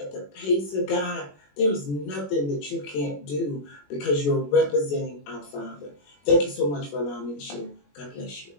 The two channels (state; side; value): late; right; 21 ms